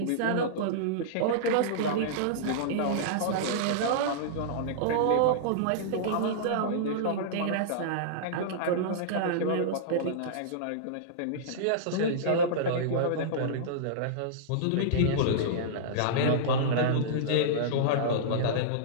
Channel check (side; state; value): both; different; correlation -0.03